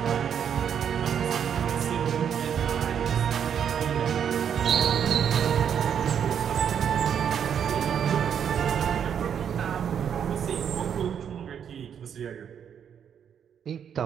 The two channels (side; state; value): left; quieter; 8.2 dB